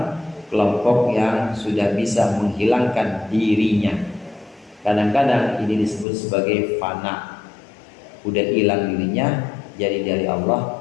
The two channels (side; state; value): right; drops out; at 6.1 s